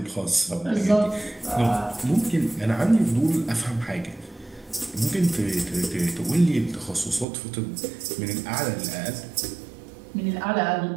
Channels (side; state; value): left; drops out; at 7.2 s